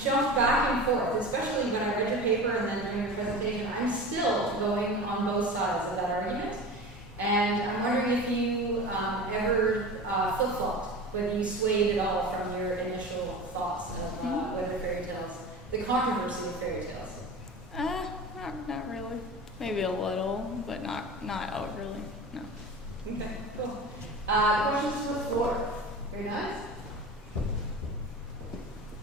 jumped back and forth, especially when I read your paper and then during your presentation. I'm still going on both sides of that argument. And I'm wondering if you ever flip-flopped, whether you swayed at all from your initial thoughts of whether fairy tales, the controversy of fairy tales. Not really. Maybe a little, but not out really. No. Okay, cool. Questions from the floor? Very nice.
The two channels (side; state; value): both; normal; correlation 0.33